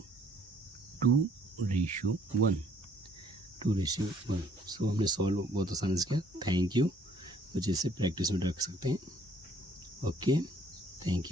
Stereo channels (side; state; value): both; normal; correlation 0.62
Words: 2:1, 2:1। सो हमने सॉल्व बहुत आसानी से किया। Thank you. बच्चे इसे प्रैक्टिस में रख सकते हैं। Okay, thank